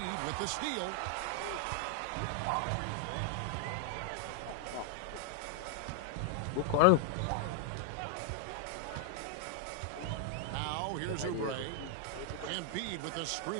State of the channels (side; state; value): both; different; correlation 0.00